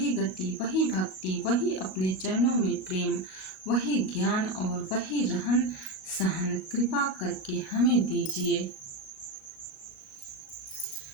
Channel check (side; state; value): right; late; 37 ms